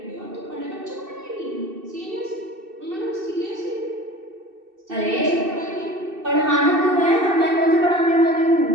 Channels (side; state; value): left; late; 2.6 ms